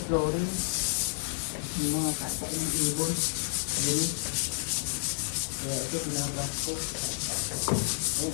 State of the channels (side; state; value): right; silent; digital silence